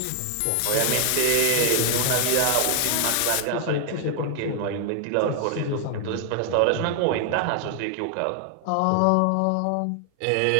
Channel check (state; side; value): different; both; correlation 0.00